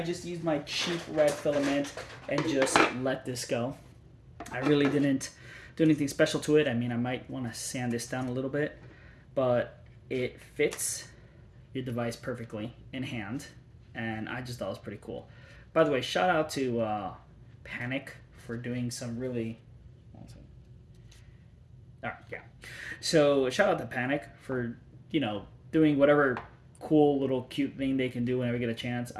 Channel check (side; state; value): both; identical; correlation 1.00